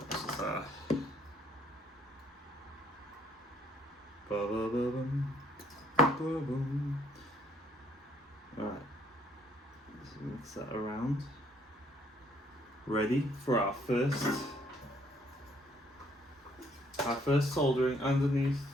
just Alright, let's mix that around. Ready for our first soldering underneath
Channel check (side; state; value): both; normal; correlation 0.67